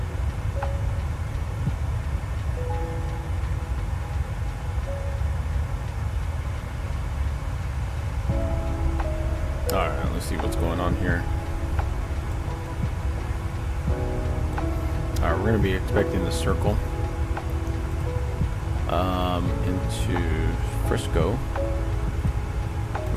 Alright, let's see what's going on here. Alright, we're going to be expecting the circle into Frisco.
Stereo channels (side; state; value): both; identical; correlation 1.00